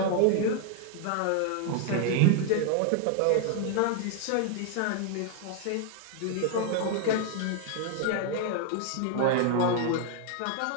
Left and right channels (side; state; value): both; different; correlation 0.00